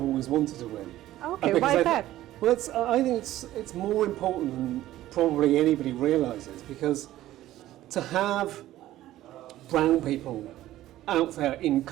always wanted to win. Okay, why is that? Well, I think it's more important than probably anybody realises, because to have brown people out there in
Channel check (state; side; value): quieter; left; 14.5 dB